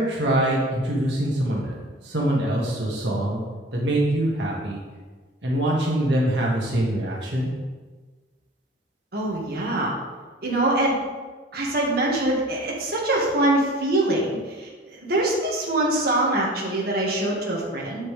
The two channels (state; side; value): normal; both; correlation 0.41